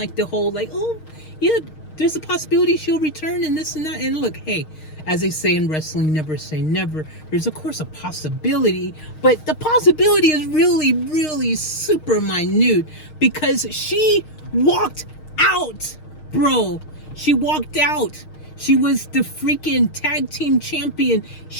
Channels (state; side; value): late; right; 6.5 ms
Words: the whole, like, oh, yeah, there's a possibility she'll return and this and that. And look, hey, as they say in wrestling, never say never. There's, of course, a possibility. But the possibility is really, really super minute, because she walked out, bro. She walked out. She was the freaking tag team champion.